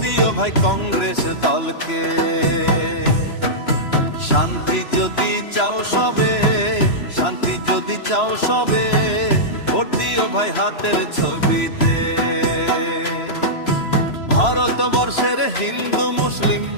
দিও ভাই কংগ্রেস দলকে। শান্তি যদি চাও সবে, শান্তি যদি চাও সবে, ভোট দিও ভাই হাতের ছবিতে। ভারতবর্ষের হিন্দু মুসলিম,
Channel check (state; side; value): late; right; 3.0 ms